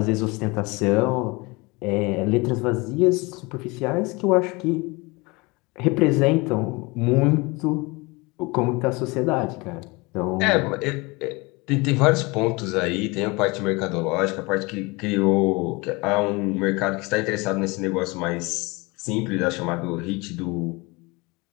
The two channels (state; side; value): quieter; right; 25.5 dB